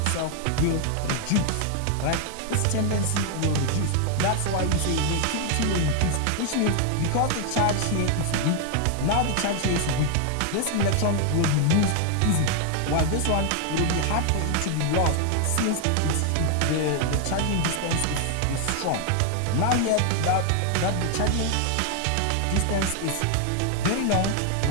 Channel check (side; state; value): both; different; correlation 0.00